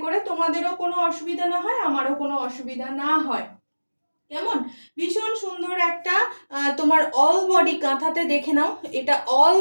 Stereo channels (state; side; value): inverted; both; correlation -1.00